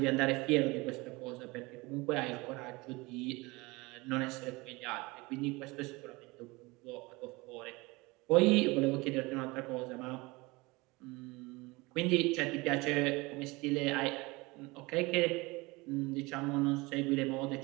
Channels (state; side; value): quieter; left; 23.8 dB